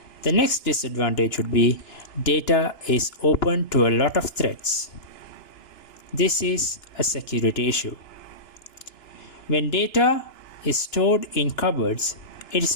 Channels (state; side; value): late; right; 2.9 ms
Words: The next disadvantage would be data is open to a lot of threats. This is a security issue. When data is stored in cupboards, it is